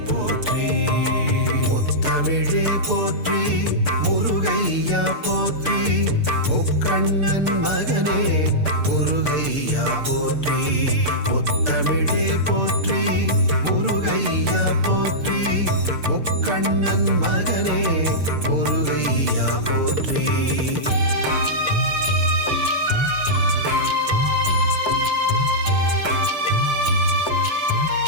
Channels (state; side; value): late; left; 6.8 ms